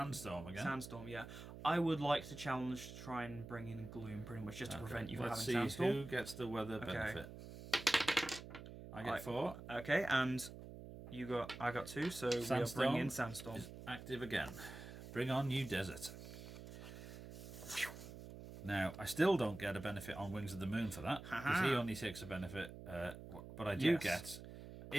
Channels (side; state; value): right; noise; hum, 12 dB below the sound